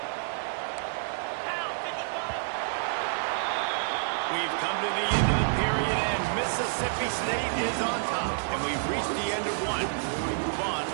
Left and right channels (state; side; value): silent; left; digital silence